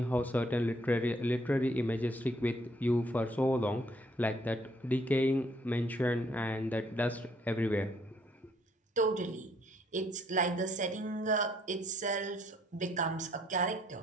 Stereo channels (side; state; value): both; normal; correlation 0.66